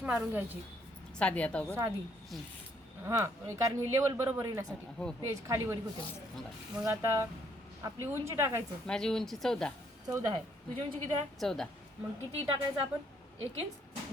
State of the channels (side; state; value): both; normal; correlation 0.68